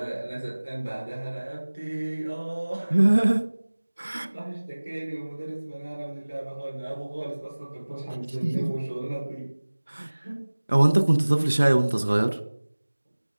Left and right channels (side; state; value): both; inverted; correlation -1.00